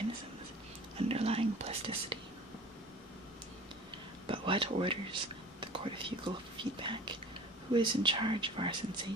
underlying plasticity. But what orders the cortical feedback? Who is in charge of our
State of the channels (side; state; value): both; normal; correlation 0.41